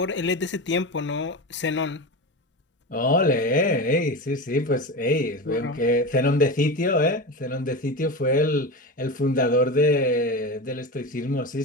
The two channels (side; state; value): both; normal; correlation 0.23